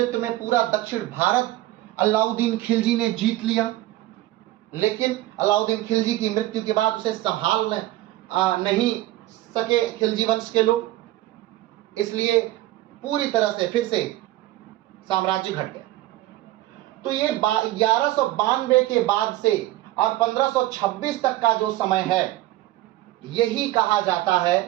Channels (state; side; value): quieter; left; 16.2 dB